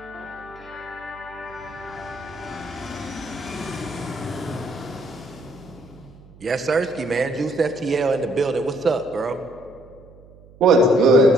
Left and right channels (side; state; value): right; noise; hum, 23 dB below the sound